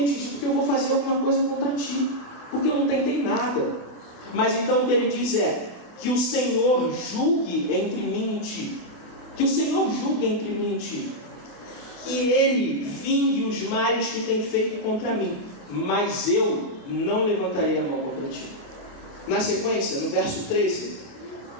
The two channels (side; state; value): right; late; 28 ms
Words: te dito que eu vou fazer alguma coisa contra ti? Porque eu não tentei nada. Mas então o que ele diz é: que o Senhor julgue entre mim e ti. Que o Senhor julgue entre mim e ti. Que ele vingue os males que tem feito contra mim, mas eu não levantarei a mão contra ti. Na sequência, no verso 13,